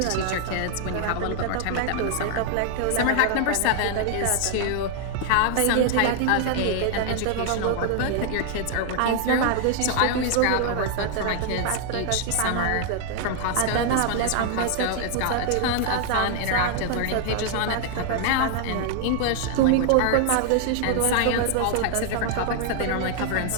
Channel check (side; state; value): both; different; correlation 0.00